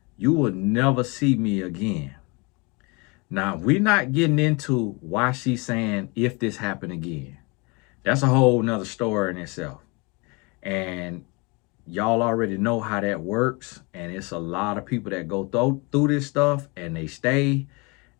you will never see me again. Now, we're not getting into why she's saying if this happened again. That's a whole nother story in itself. And y'all already know how that works. And it's a lot of people that go through this stuff and they stay.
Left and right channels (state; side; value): quieter; right; 28.9 dB